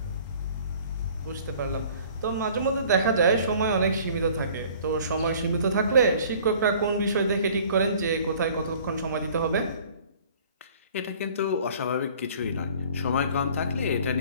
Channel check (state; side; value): inverted; both; correlation -0.51